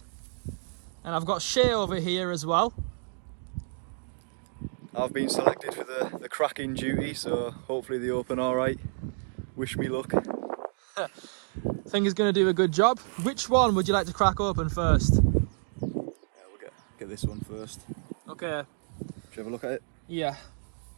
And I've got Shay over here as well. I've been selected for the cracking duty, so hopefully they open alright. Wish me luck. I think he's going to do a good job. Which one would you like to crack open first? We'll get this one first. Okay. Should you have a look at it? Yeah.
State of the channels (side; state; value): left; silent; digital silence